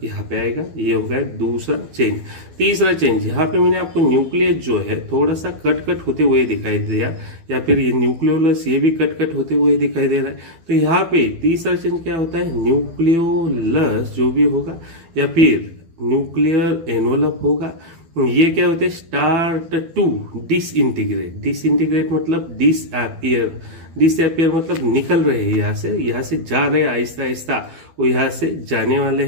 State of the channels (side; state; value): left; late; 12 ms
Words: यहाँ पे आएगा। ये हो गया दूसरा चेंज। तीसरा चेंज यहाँ पे मैंने आपको न्यूक्लियस जो है थोड़ा सा कट होते हुए दिखाई दिया, या फिर ये न्यूक्लियोलस ये भी कट होते हुए दिखाई दे रहा है। तो यहाँ पे तीसरा चेंज क्या होता है? न्यूक्लियोलस जो भी होगा या फिर न्यूक्लियर एनवलप होगा, ये क्या होते हैं? Start to disintegrate. डिसइंटीग्रेट मतलब डिसअपियर। डिसअपियर मतलब निकल रहे हैं यहाँ से जा रहे हैं आहिस्ता आहिस्ता, वो यहाँ से जाने वाले